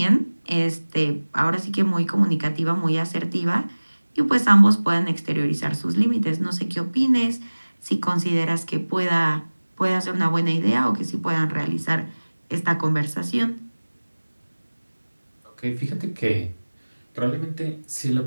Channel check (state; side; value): inverted; both; correlation -1.00